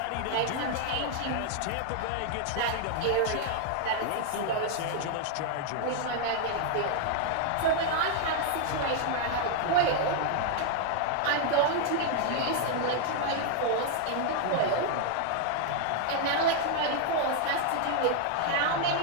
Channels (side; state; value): both; different; correlation 0.00